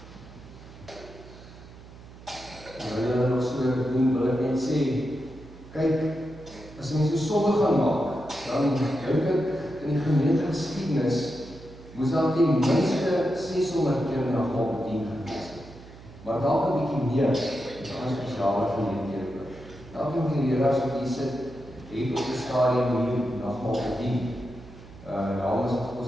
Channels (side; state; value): right; noise; hum, 18 dB below the sound